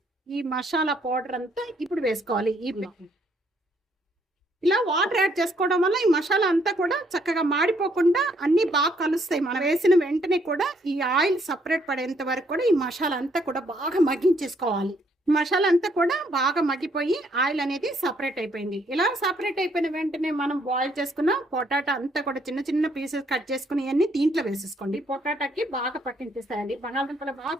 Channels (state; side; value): normal; both; correlation 0.69